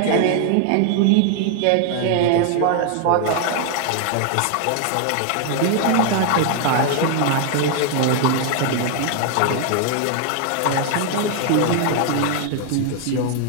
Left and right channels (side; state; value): both; different; correlation 0.00